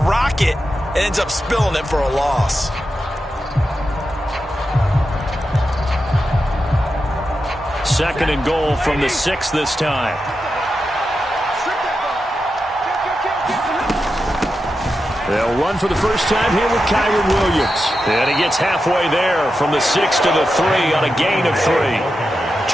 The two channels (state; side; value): normal; both; correlation 0.89